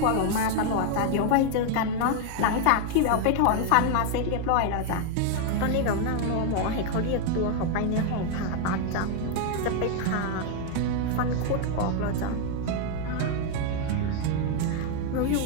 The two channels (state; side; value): different; both; correlation 0.00